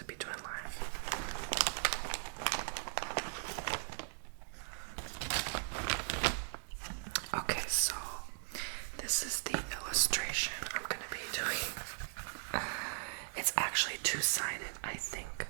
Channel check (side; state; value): left; silent; digital silence